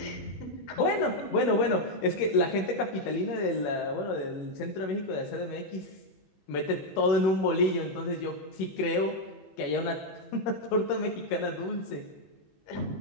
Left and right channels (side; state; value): right; late; 21 ms